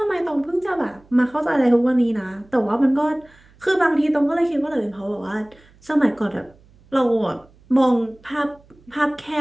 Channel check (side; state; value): right; noise; hum, 29 dB below the sound